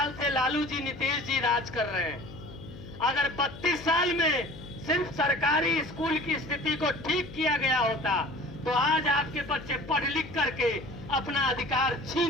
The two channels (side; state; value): left; noise; hum, 15 dB below the sound